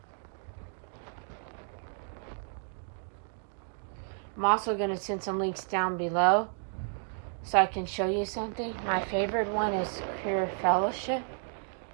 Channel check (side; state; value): left; silent; 56 dB below the other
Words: I'm also going to send some links down below so I can show you something. My favorite one is Queer Fellowship,